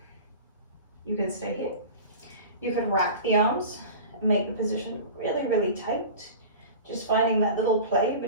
you can stay here. You could wrap the arms and make the position really, really tight. Just finding that little play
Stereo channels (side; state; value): both; inverted; correlation -0.36